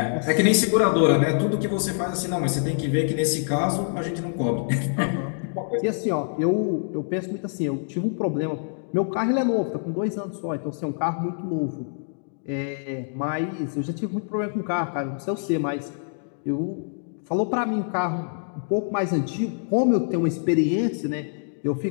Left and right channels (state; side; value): silent; right; digital silence